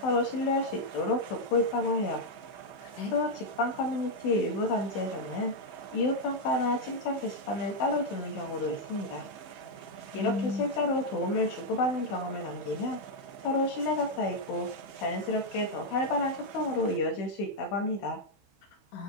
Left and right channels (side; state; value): right; late; 15 ms